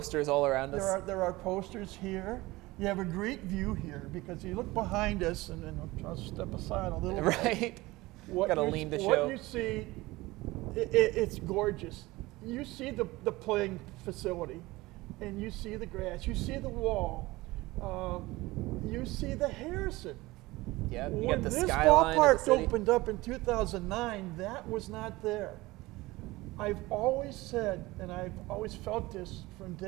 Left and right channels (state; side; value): quieter; left; 20.2 dB